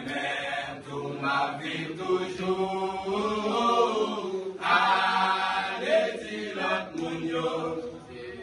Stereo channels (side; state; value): both; identical; correlation 1.00